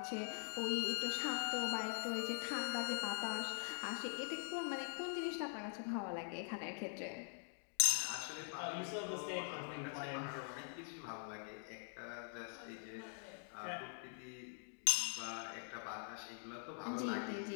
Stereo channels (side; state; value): right; silent; digital silence